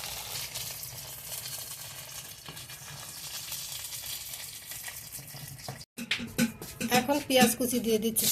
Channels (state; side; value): identical; both; correlation 1.00